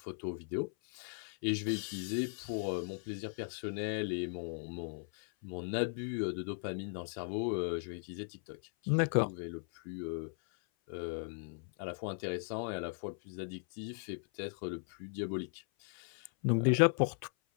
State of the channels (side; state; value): right; silent; 53 dB below the other